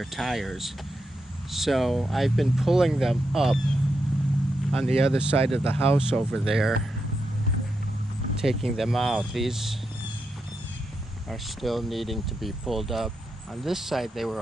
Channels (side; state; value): both; normal; correlation 0.85